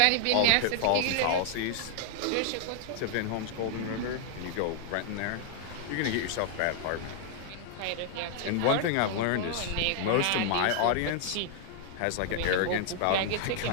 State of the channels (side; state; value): both; different; correlation -0.01